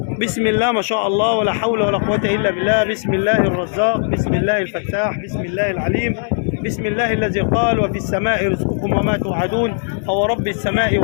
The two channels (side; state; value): right; silent; 66 dB below the other